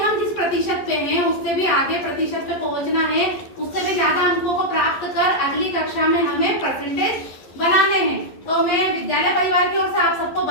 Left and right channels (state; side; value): late; right; 11 ms